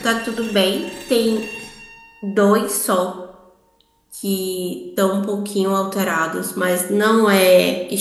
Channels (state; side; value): identical; both; correlation 1.00